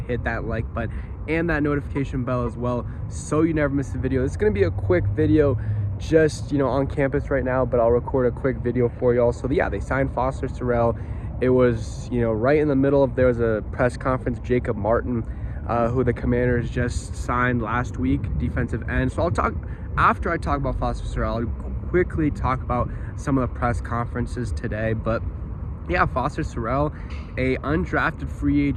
hit that like button, and that notification bell as well, so you never miss a video. It's going to be a quick video, just on campus right now, but I'll record a quick video for y'all. So yeah, they signed Foster Sarell. It was, right in the middle of, there was a press conference, Jacob Martin, who the Commanders just signed last week, defensive end. So after I talk about Foster Sarell, I'll quickly talk about some of the press conferences today. But yeah, Foster Sarell, a undrafted free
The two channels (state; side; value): identical; both; correlation 1.00